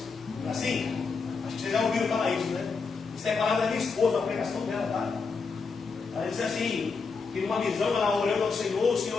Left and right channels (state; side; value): quieter; right; 4.8 dB